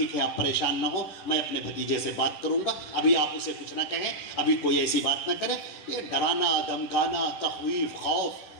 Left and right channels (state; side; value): late; right; 11 ms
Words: ہے آپ پریشان نہ ہو، میں اپنے بھتیجے سے بات کروں گا، ابھی آپ اسے کچھ نہ کہیں، ابھی کوئی ایسی بات نہ کرے، یہ ڈرانا دھمکانا تخویف خوف۔